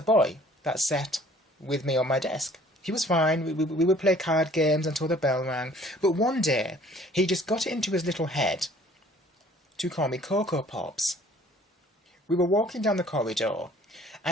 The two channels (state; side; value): normal; both; correlation 0.55